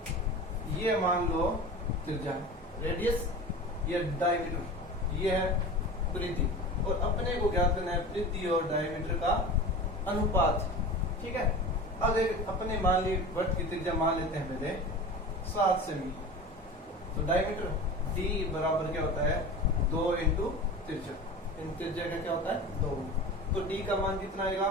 ये मान लो त्रिज्या, रेडियस, ये डायमीटर, ये है परिधि। और अपने को ज्ञात करना है परिधि और डायमीटर का अनुपात। ठीक है, अब अपने मान ली वृत्त की त्रिज्या मान लेते हैं पहले 7 सेमी। तो डायमीटर डी बराबर क्या होता है? 2 इंटू त्रिज्या। इन त्रिज्या का क्या होता है? 2। तो डी का मान कितना आएगा?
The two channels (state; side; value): normal; both; correlation 0.33